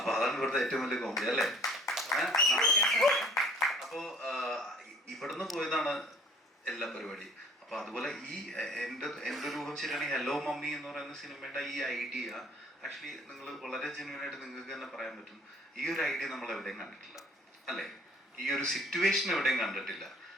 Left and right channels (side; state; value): both; normal; correlation 0.54